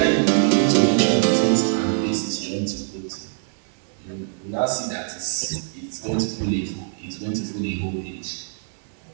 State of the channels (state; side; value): silent; left; digital silence